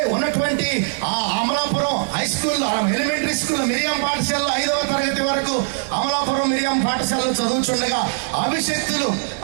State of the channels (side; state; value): left; silent; digital silence